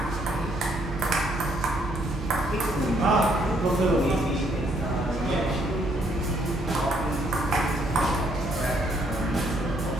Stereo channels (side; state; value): both; normal; correlation 0.69